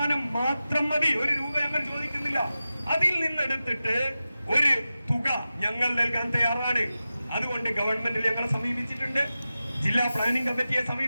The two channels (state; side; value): inverted; both; correlation -0.94